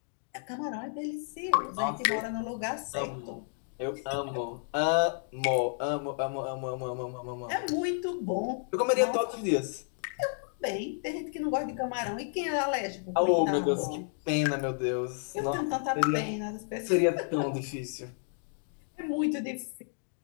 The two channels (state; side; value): silent; right; 57 dB below the other